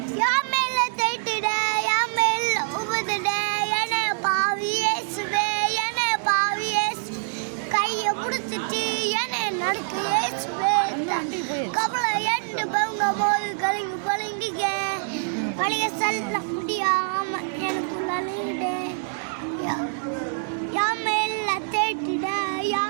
யாமேல தேய்ட்டிட யாமேல உபதிட என பாவி இயேசுவே என பாவி இயேசு கையை பிடிச்சிட்டு என நடக்கு இயேசுவே கவலை எண்டு பங்க போது கலிங்கி பழங்கிக்க பழைய சொல்ல முடியாம எனக்குள்ள அழியிடே யாமேல தேய்ட்டிட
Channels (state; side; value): silent; left; digital silence